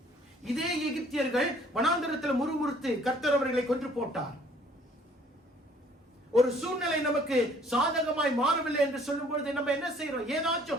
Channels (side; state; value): both; normal; correlation 0.58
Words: இதே எகிப்தியர்கள் வனாந்தரத்தில் முறுமுறுத்து கர்த்தர் அவர்களை கொன்று போட்டார். ஒரு சூழ்நிலை நமக்கு சாதகமாய் மாறவில்லை என்று சொல்லும் பொழுது நம்ம என்ன செய்யறோம்?